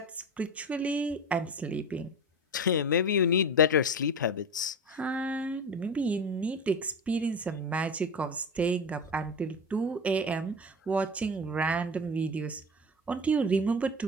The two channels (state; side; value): normal; both; correlation 0.27